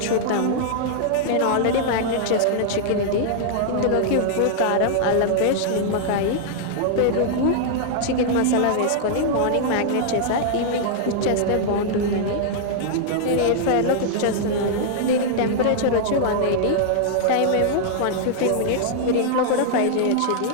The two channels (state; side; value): different; both; correlation -0.01